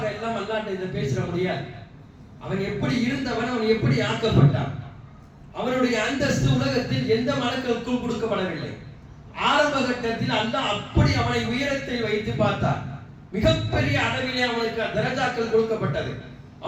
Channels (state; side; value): identical; both; correlation 1.00